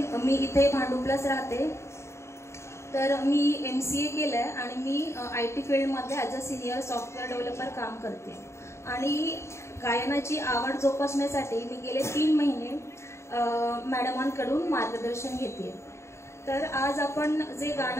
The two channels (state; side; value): late; right; 0.13 ms